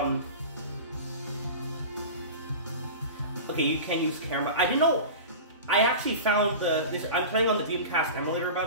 okay, you can use camera. I didn't know. I actually found this. I'm playing on the Dreamcast emulator, by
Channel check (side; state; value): both; inverted; correlation -0.32